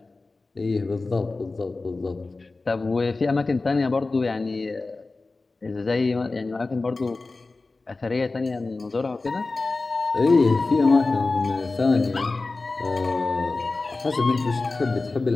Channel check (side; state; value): right; quieter; 3.5 dB